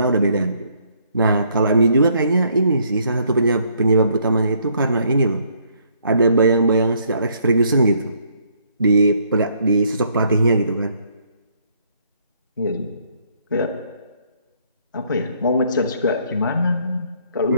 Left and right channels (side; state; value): both; inverted; correlation -0.67